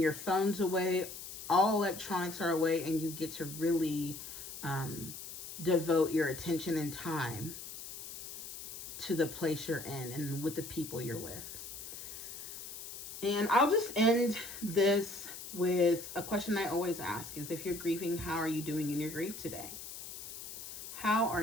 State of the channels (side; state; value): left; noise; hiss, 10 dB below the sound